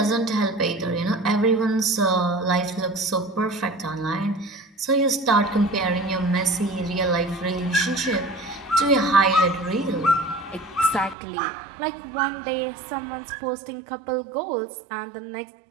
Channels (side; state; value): left; drops out; at 11.2 s